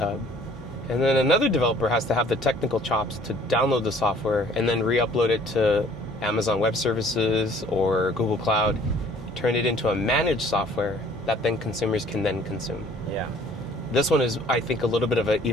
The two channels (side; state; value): both; normal; correlation 0.55